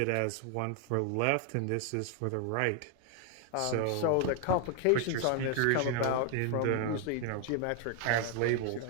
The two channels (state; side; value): different; both; correlation 0.00